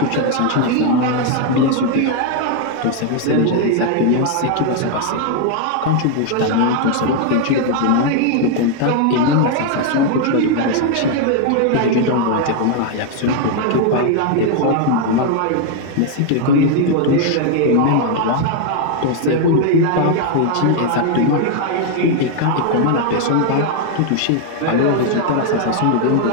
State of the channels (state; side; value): different; both; correlation 0.00